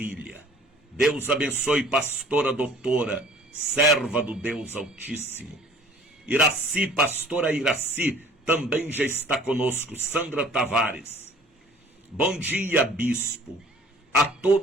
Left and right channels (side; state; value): both; normal; correlation 0.51